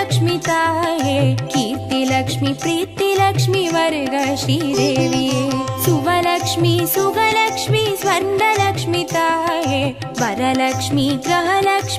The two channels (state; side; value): identical; both; correlation 1.00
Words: ताये कीर्तिलक्ष्मी प्रीतिलक्ष्मी वर्ग श्रीदेविये सुवलक्ष्मी सुगलक्ष्मी स्वर्णलक्ष्मी ताये वरलक्ष्मी